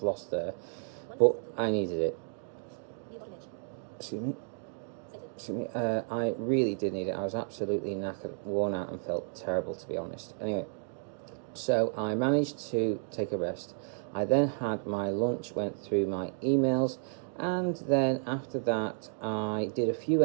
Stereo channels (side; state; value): left; silent; 56 dB below the other